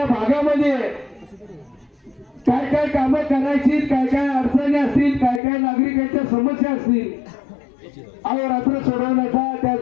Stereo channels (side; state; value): right; drops out; at 5.4 s